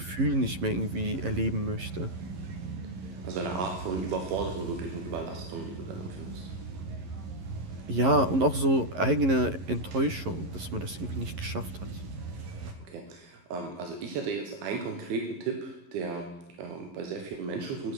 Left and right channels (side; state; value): left; late; 11 ms